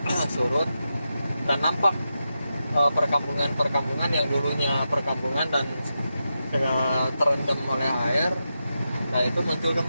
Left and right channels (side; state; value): both; inverted; correlation -0.89